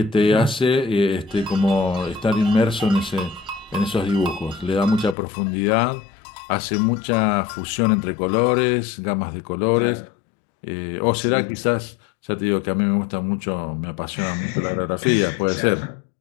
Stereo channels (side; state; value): right; drops out; at 5.2 s